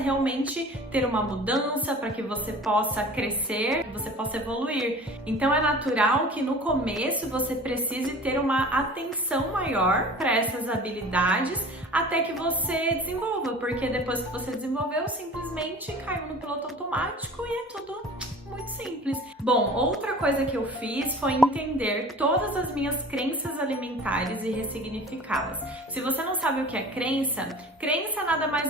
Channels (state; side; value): normal; both; correlation 0.42